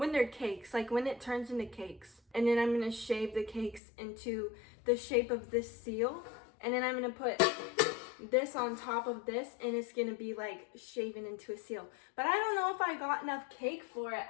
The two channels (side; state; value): right; drops out; at 3.8 s